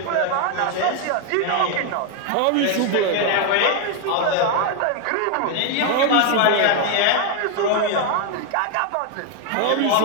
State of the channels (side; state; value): both; different; correlation 0.01